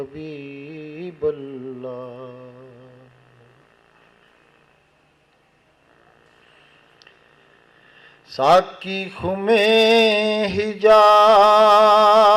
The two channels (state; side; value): identical; both; correlation 1.00